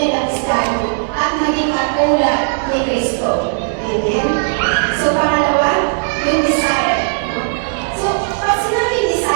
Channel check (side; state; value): left; silent; digital silence